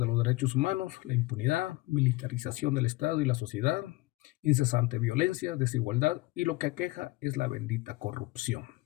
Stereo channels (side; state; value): right; quieter; 20.7 dB